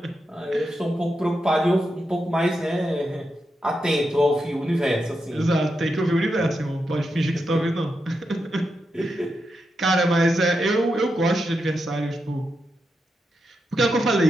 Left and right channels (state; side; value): normal; both; correlation 0.86